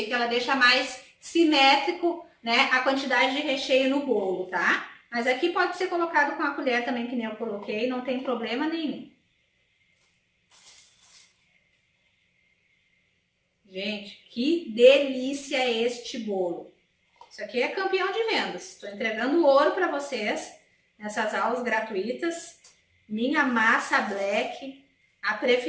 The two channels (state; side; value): identical; both; correlation 1.00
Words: que ela deixa mais simétrico, né, a quantidade de recheio no bolo, tá? Mas aqui pode ser colocado com a colher também, que nem eu coloquei, não tem problema nenhum. Gente, que delícia este bolo! Isso aqui é campeão de vendas. Estou entregando ouro para vocês nessas aulas gratuitas. Minha massa black, a